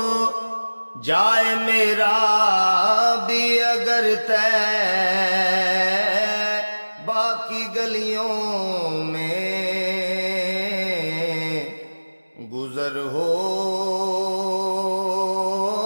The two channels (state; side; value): inverted; both; correlation -1.00